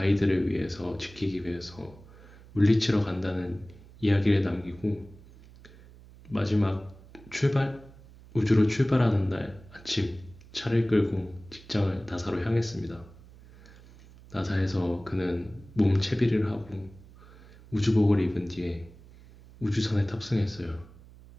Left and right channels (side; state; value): right; noise; hum, 21 dB below the sound